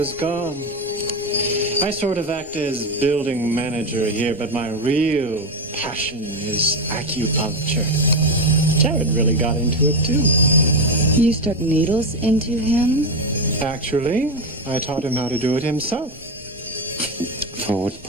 gone. I sort of act as building manager here, but my real passion is acupuncture. Jared really got into it too. You stuck needles into him? Actually, I taught him how to do it himself. For what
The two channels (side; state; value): both; normal; correlation 0.13